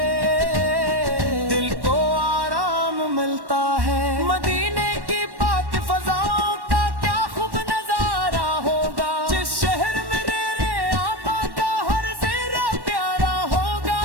دل کو آرام ملتا ہے۔ مدینے کی پاک فضاؤں کا کیا خوب نظارہ ہوگا، جس شہر میں رے آقا کا ہر زیرہ پیارا ہوگا۔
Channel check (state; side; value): late; left; 1.1 ms